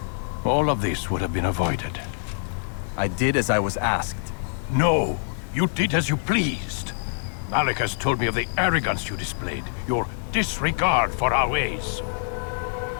all of this would have been avoided. I did as I was asked. No, you did as you pleased. Malik has told me of the arrogance you displayed, your disregard for our ways.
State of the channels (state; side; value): silent; right; 60 dB below the other